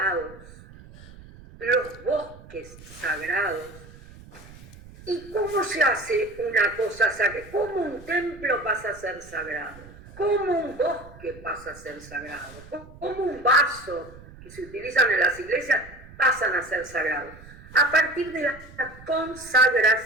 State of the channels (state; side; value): noise; right; rumble, 19 dB below the sound